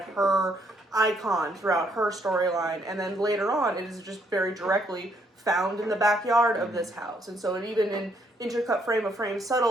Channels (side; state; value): both; normal; correlation 0.71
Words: her icon throughout her storyline. And then later on, it is just very directly found in the backyard of this house. And so it even in intercut frame of frame,